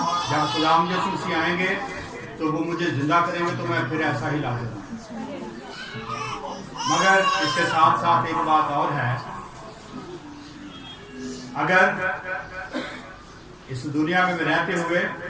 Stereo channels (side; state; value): both; identical; correlation 1.00